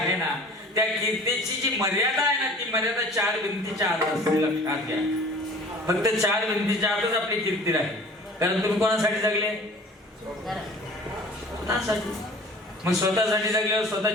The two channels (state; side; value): normal; both; correlation 0.46